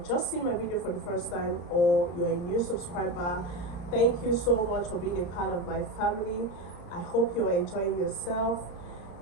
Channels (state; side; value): late; right; 33 ms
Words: seeing my video for the first time or you're a new subscriber, thank you so much for being a part of my family. I hope you are enjoying yourself.